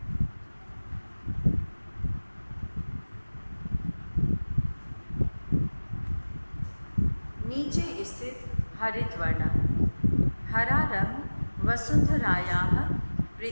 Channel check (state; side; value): inverted; both; correlation -1.00